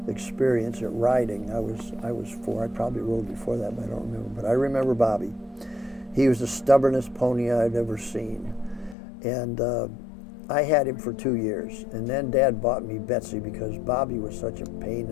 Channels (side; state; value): right; drops out; at 9.0 s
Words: experience at riding. I was 4. I probably rode before that, but I don't remember. But I remember Bobby. He was the stubbornest pony I'd ever seen. And I had him for 2 years. And then Dad bought me Betsy because Bobby was such a pain